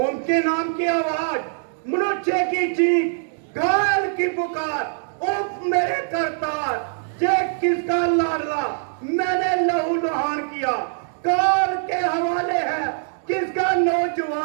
के नाम की आवाज, मनुष्य की चीख, घायल की पुकार, उफ मेरे करतार। ये किसका लाडला मैंने लहू लुहान किया? काल के हवाले है किसका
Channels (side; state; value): left; silent; digital silence